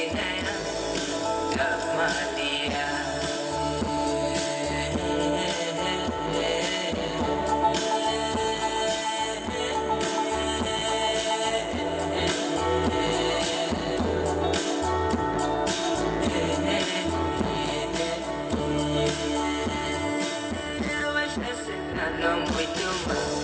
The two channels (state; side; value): identical; both; correlation 1.00